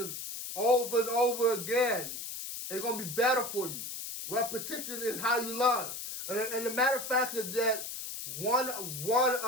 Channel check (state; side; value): noise; left; hiss, 7 dB below the sound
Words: over and over again, it's gonna be better for you. Repetition is how you learn. And the matter of fact is that one